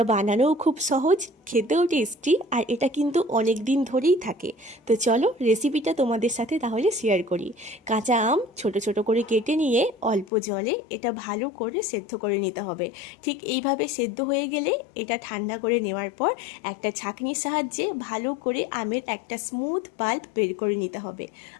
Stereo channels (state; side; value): drops out; right; at 10.2 s